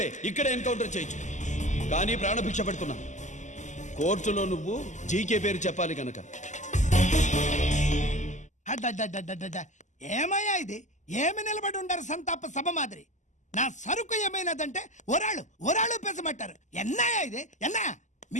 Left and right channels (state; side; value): late; right; 0.35 ms